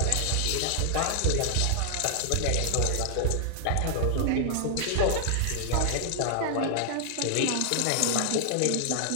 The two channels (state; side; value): different; both; correlation 0.00